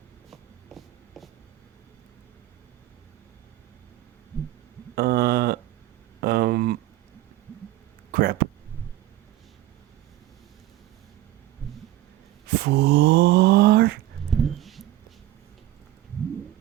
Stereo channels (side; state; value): left; quieter; 15.0 dB